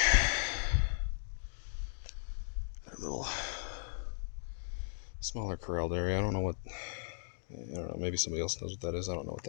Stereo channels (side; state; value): right; silent; digital silence